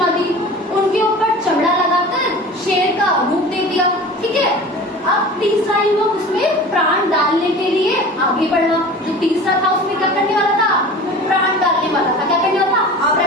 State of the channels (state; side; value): normal; both; correlation 0.38